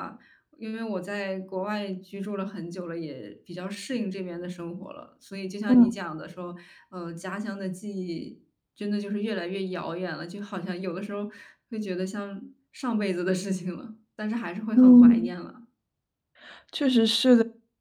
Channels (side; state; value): both; identical; correlation 1.00